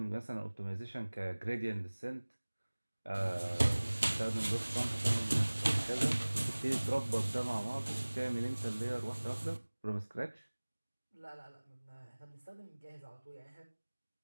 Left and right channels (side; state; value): both; inverted; correlation -1.00